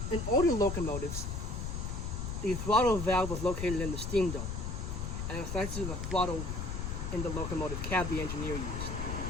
In older locomotives, the throttle valve was located in the steam dome, and it's next to the throttle in the locomotive cab the engineer used.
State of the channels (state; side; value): noise; left; rumble, 3 dB below the sound